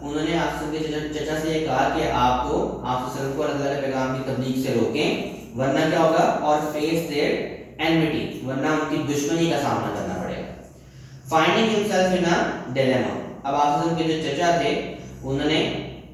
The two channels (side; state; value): both; identical; correlation 1.00